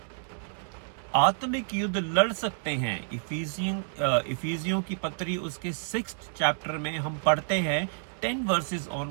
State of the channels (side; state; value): left; silent; 58 dB below the other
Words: आत्मिक युद्ध लड़ सकते हैं। इफिसियों की पत्री उसके 6th चैप्टर में हम पढ़ते हैं 10 वर्सेस